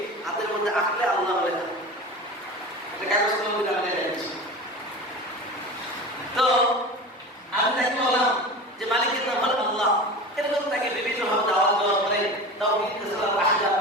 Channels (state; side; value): normal; both; correlation 0.31